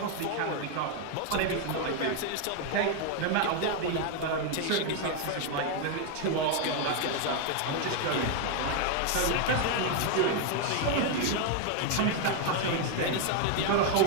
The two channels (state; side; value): different; both; correlation 0.01